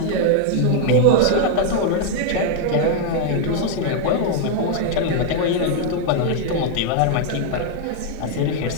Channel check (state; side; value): different; both; correlation 0.00